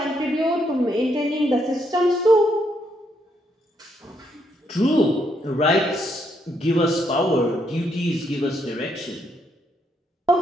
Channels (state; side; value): normal; both; correlation 0.75